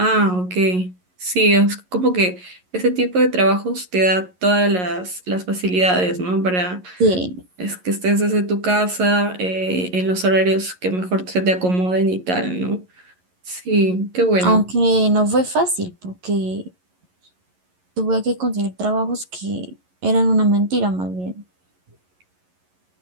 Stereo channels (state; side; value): late; left; 11 ms